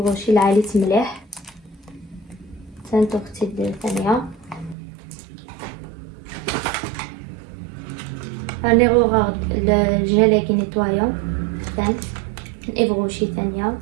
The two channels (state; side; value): drops out; left; at 4.8 s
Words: العالي مليح تانتو اختي الثانيه هاني غورد الجيلي كي نيطوايون ثاني إيفغوشي ثانيه